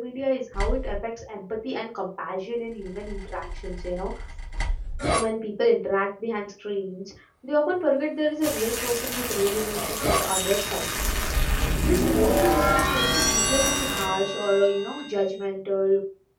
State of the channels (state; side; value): identical; both; correlation 1.00